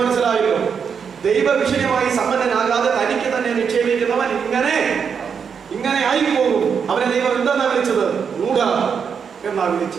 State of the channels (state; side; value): quieter; left; 6.6 dB